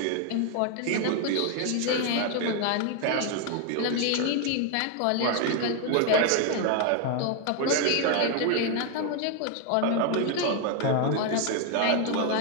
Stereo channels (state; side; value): different; both; correlation 0.01